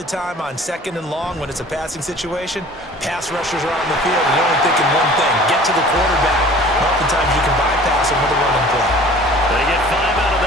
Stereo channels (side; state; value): both; normal; correlation 0.47